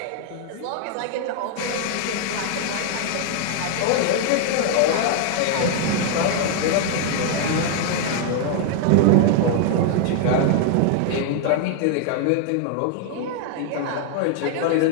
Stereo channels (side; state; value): both; different; correlation 0.00